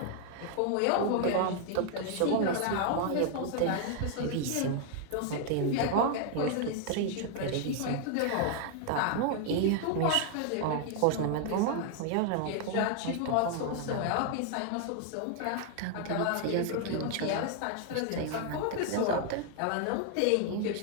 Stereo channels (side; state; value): both; different; correlation 0.00